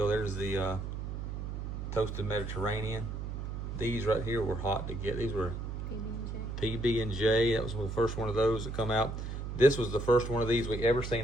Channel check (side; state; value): right; noise; hum, 5 dB below the sound